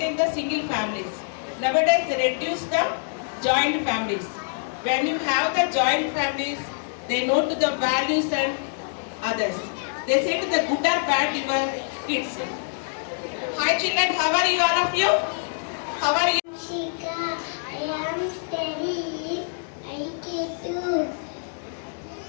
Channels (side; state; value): right; silent; digital silence